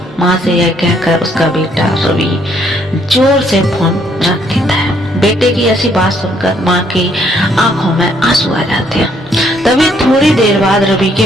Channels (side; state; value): both; normal; correlation 0.68